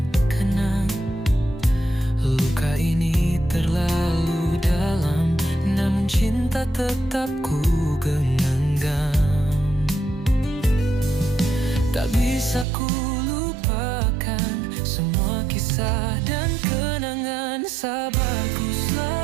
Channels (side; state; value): left; drops out; at 12.7 s